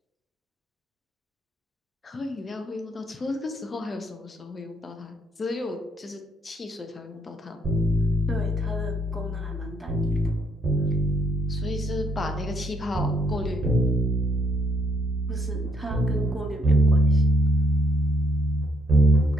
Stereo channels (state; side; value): normal; both; correlation 0.71